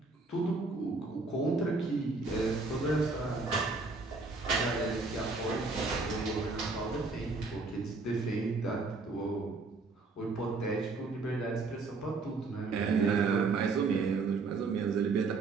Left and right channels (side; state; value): left; quieter; 3.9 dB